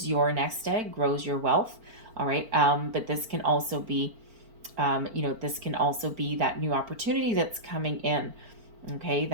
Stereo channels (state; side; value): late; left; 4.5 ms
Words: your nest egg, grows your wealth. All right, but this can also be, that new opportunity that's coming in. Okay,